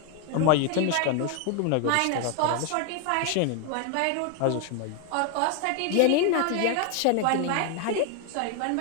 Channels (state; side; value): different; both; correlation 0.01